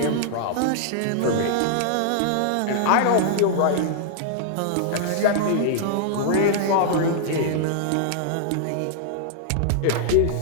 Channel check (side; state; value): both; different; correlation -0.01